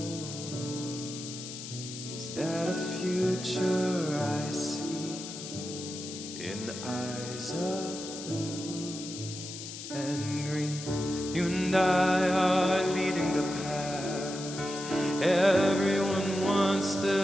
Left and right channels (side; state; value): left; noise; hiss, 10 dB below the sound